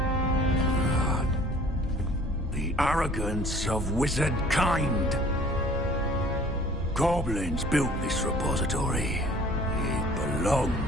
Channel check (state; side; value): normal; both; correlation 0.51